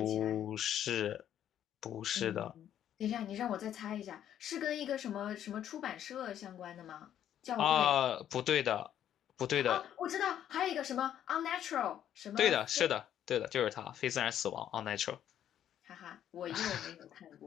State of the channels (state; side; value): quieter; right; 10.5 dB